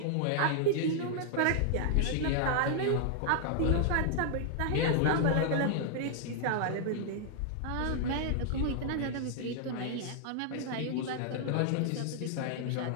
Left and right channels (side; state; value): both; different; correlation -0.01